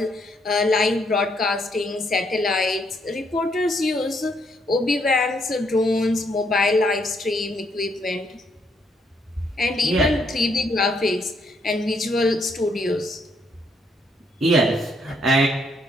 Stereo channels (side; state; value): both; normal; correlation 0.72